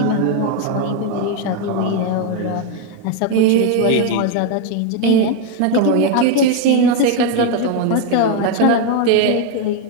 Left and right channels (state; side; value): different; both; correlation 0.01